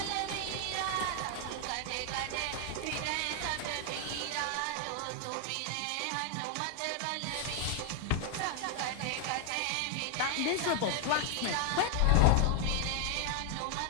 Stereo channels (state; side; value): different; both; correlation 0.00